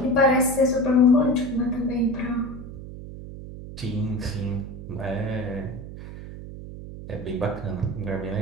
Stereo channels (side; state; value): right; noise; hum, 12 dB below the sound